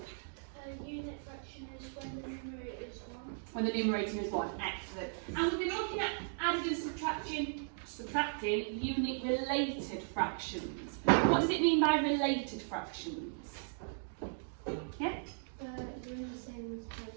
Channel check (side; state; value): left; silent; digital silence